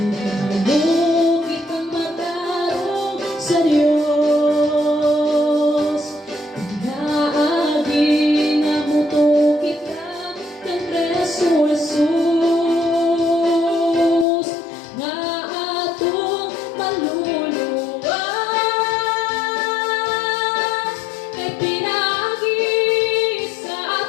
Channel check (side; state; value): right; drops out; at 14.2 s